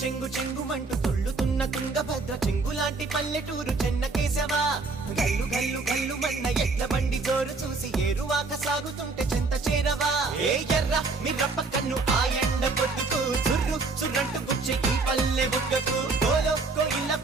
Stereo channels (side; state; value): left; quieter; 3.9 dB